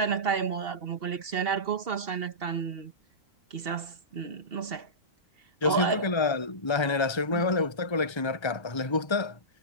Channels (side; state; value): right; late; 1.3 ms